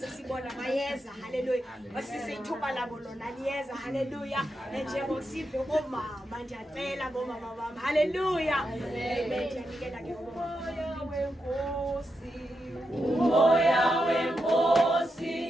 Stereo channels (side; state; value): both; normal; correlation 0.85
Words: bayeza haleluya wasisi ithuba labo lona liyeza haleluya njengosive bomama ndiyacela bomama bami haleluya amen ndiyanikela ke umoya